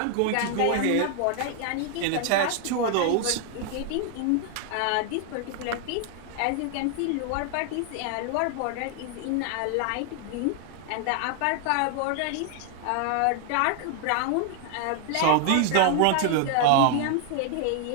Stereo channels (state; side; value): different; both; correlation 0.00